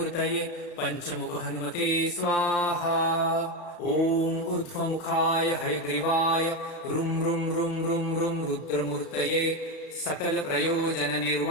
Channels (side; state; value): right; late; 34 ms